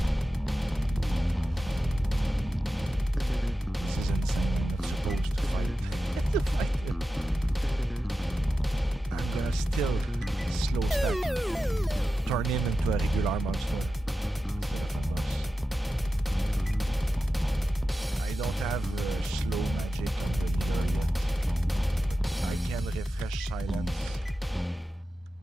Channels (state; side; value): normal; both; correlation 0.92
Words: This is insane. I'm not supposed to fight it. I'm gonna still slow stack. Turn him into a regular monster instead of a boss. I don't have slow magic on the healer yet. I can refresh silence.